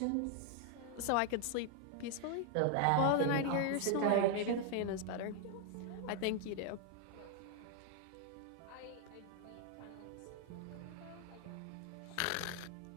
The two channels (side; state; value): both; different; correlation 0.00